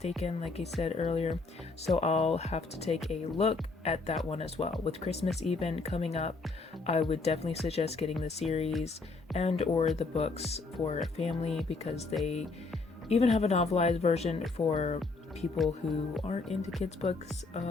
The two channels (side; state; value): right; quieter; 3.8 dB